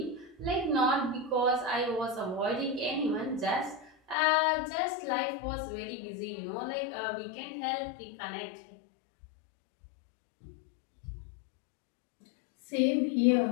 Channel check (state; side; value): drops out; right; at 4.2 s